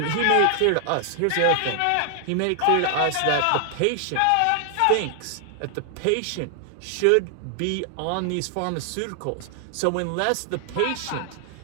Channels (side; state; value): both; different; correlation 0.00